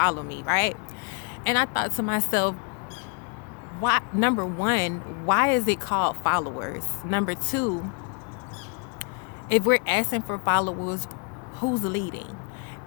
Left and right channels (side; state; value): right; quieter; 36.6 dB